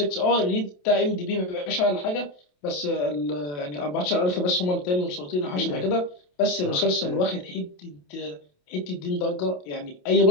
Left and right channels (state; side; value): late; right; 28 ms